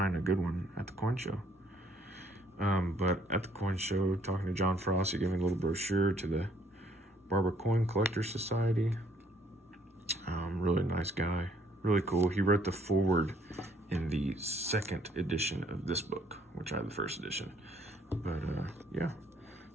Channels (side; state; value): both; normal; correlation 0.65